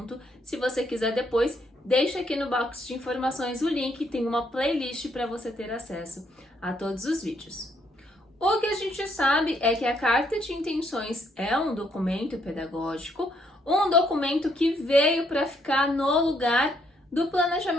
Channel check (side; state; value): both; normal; correlation 0.72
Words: Se você quiser depois, deixa aqui no box de informações o link, tem uma playlist para você ter acesso a todos os vídeos. O que a gente sabe é que a carta de intenções é um documento pedagógico, um documento que veio para ficar no lugar do